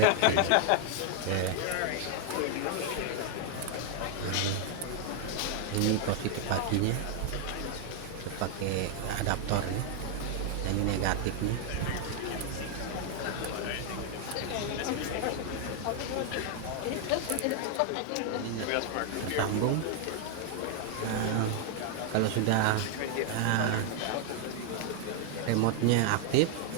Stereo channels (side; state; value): both; different; correlation 0.00